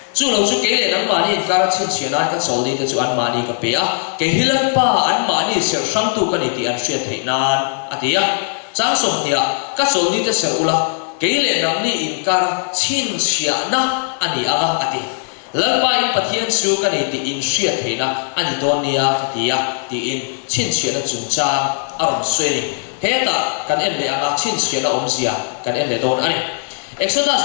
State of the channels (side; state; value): right; silent; digital silence